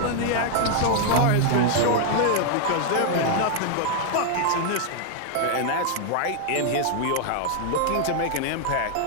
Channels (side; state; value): both; different; correlation 0.00